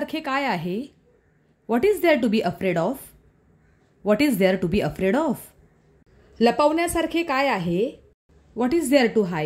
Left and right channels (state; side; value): identical; both; correlation 1.00